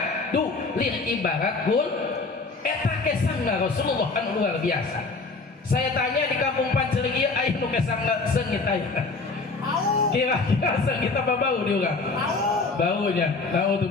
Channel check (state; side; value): quieter; right; 3.8 dB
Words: lir ibarat gul eta kesangna Rasulullah anu luar biasa. Saya tanya di kampung Panceling ieu aya nu kesangna seungit aya. Kira-kira seungit apa bau di urang? Baunya.